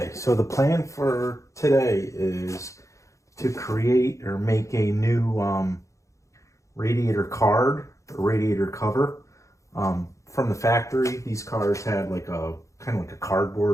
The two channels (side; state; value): right; late; 0.15 ms